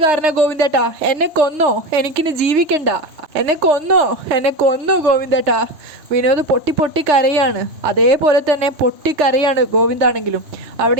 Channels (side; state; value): left; late; 3.3 ms